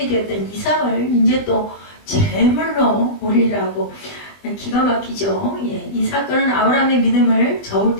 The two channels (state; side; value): late; right; 20 ms